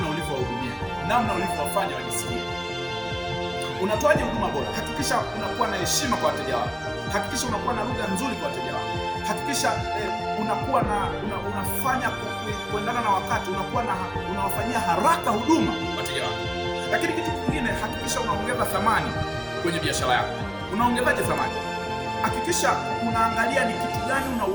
ulivyowahudumia, namna ulivyowafanya wajisikie. Unatoaje huduma bora? Hakikisha unakuwa na heshima kwa wateja wako. Hakikisha unakuwa na lugha nzuri kwa wateja wako. Hakikisha unakuwa unafanya kuendana na wakati, unawafanyia haraka huduma wateja wako. Lakini kitu kingine, hakikisha unaongeza thamani kwenye biashara yako. Unaongezaje thamani? Hakikisha unaangalia ni kitu gani una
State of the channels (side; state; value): both; identical; correlation 1.00